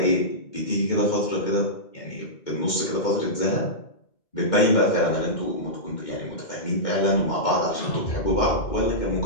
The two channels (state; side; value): late; right; 2.1 ms